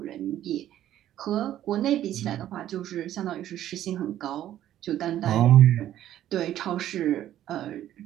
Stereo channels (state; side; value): quieter; left; 12.2 dB